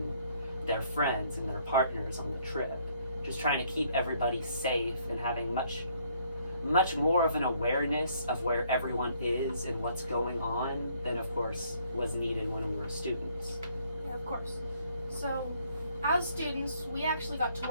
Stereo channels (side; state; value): both; inverted; correlation -0.66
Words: their friends and their partners on the trip. Just trying to keep everybody safe and having much more of an awareness of where everyone is and what's going on than, of course, was needed when we were students. Yeah, of course. So, as students, we actually got to